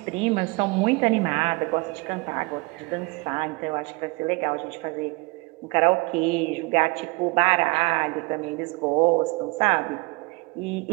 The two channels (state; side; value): quieter; left; 26.3 dB